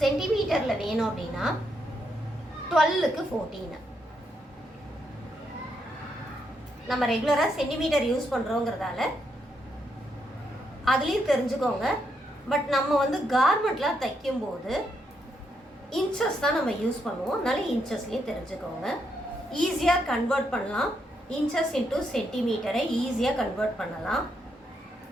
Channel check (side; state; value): both; normal; correlation 0.79